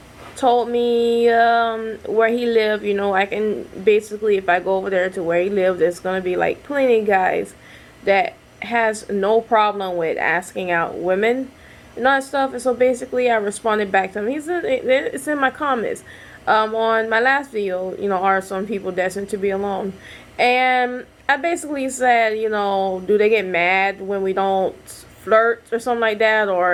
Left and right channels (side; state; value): both; identical; correlation 1.00